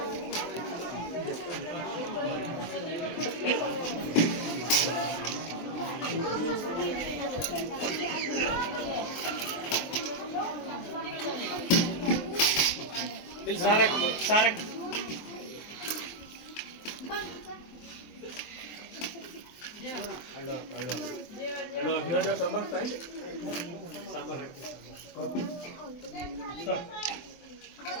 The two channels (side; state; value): right; late; 23 ms